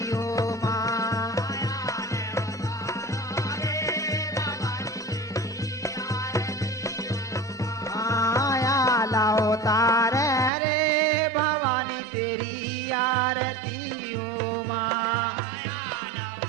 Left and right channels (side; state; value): left; drops out; at 10.5 s